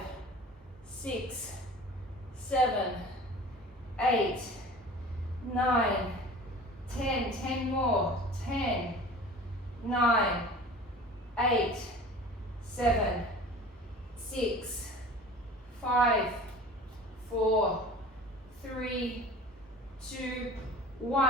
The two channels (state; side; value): normal; both; correlation 0.42